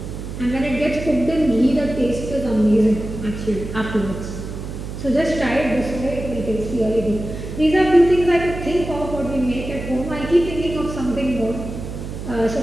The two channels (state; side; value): noise; right; hum, 8 dB below the sound